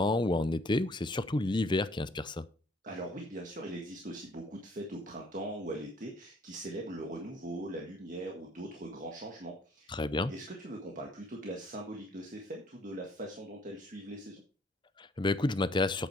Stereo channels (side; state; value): both; normal; correlation 0.61